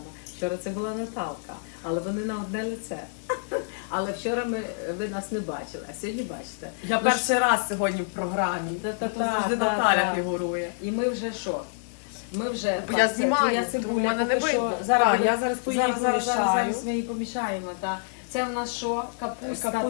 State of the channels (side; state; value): right; silent; digital silence